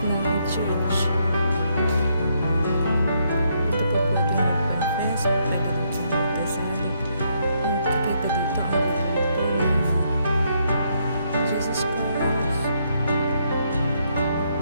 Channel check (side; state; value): both; inverted; correlation -0.74